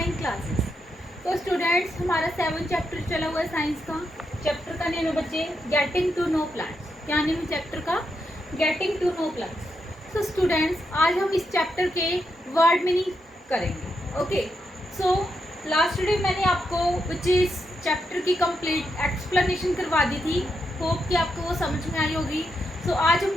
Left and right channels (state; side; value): normal; both; correlation 0.83